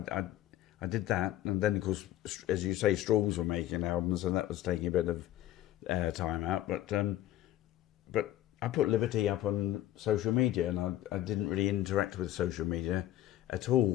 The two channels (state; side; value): quieter; right; 13.7 dB